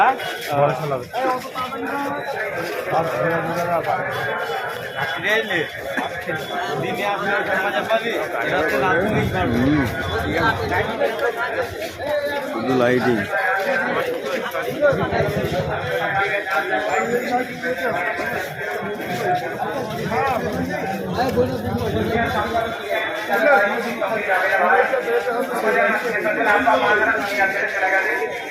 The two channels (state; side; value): identical; both; correlation 1.00